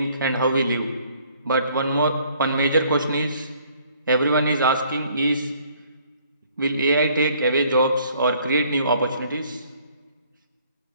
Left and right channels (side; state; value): both; inverted; correlation -0.61